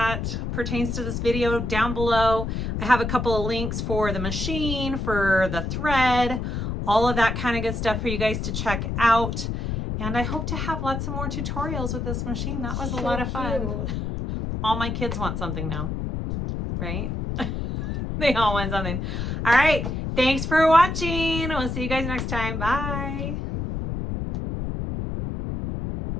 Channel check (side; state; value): left; noise; rumble, 3 dB below the sound